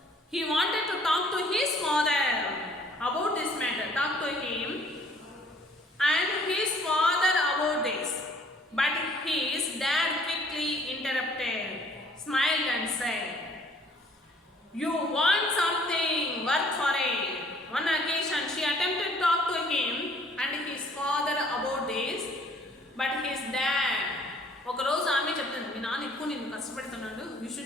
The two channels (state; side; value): normal; both; correlation 0.58